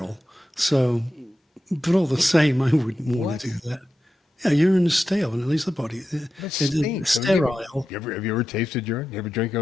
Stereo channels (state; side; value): normal; both; correlation 0.90